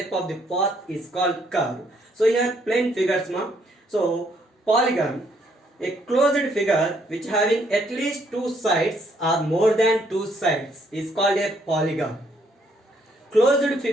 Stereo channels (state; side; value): normal; both; correlation 0.69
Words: of the path is called curve. So here plane figures, ma. So polygon, a closed figure which having at least two sides or more than two sides is called a polygon. Closed